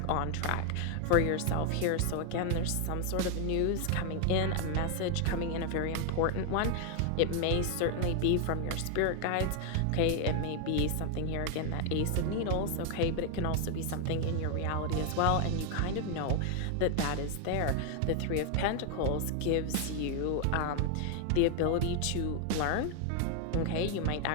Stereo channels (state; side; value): different; both; correlation 0.00